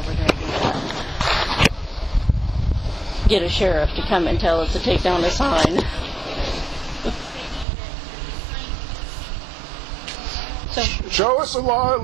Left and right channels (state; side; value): drops out; left; at 7.7 s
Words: here and do that. Get a sheriff to come and tell us to take down the sign. So, show us the law,